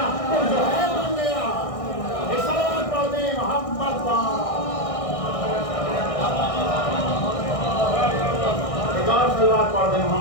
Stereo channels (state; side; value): late; right; 1.6 ms